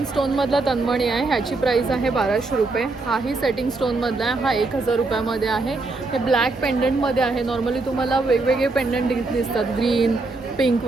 स्टोनमधला तन्मणी आहे. ह्याची प्राईस आहे 1200 रुपये. हाही सेटिंग स्टोनमधला आहे. हा 1000 रुपयामध्ये आहे. हे ब्लॅक पेंडंटमध्ये आहे. नॉर्मली तुम्हाला वेगवेगळे पेंडंट दिसतात, ग्रीन, पिंक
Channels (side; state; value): left; quieter; 3.4 dB